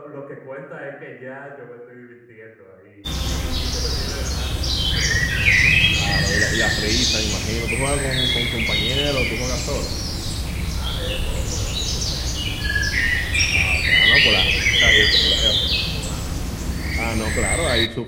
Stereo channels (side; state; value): both; identical; correlation 1.00